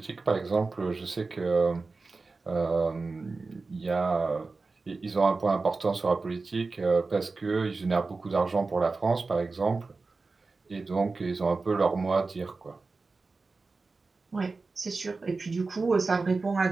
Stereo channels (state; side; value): quieter; left; 3.9 dB